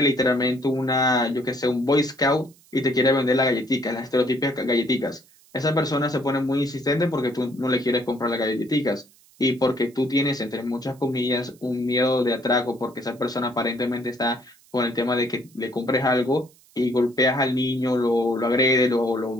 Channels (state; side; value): noise; right; hiss, 29 dB below the sound